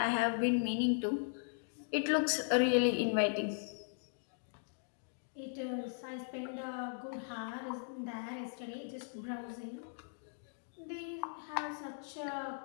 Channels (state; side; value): silent; right; digital silence